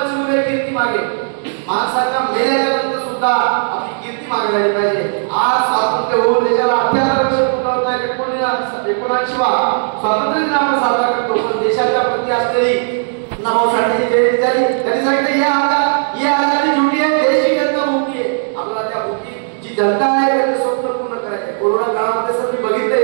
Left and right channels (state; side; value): silent; left; digital silence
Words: कीर्ती मागे. माणसाच्या मेल्याच्या नंतर सुद्धा आपली कीर्ती मागे राहिली पाहिजे. आज स्वातंत्र्य होऊन देशाला 78 वर्ष पूर्ण होत आहेत. 79वा स्वातंत्र्य दिन आपण साजरा करतो. पण देशाच्या प्रती असलेली नाभाऊ साठेची जयंती झाली. त्यांनी सांगितलं ये आजादी झुटी आहे, देश ही जनता भुकी आहे. आपल्याला त्या भुकी जी जनता आहे त्यांचं स्वप्न पूर्ण करायचं आहे. कोरोना काळामध्ये सर मी बघितलं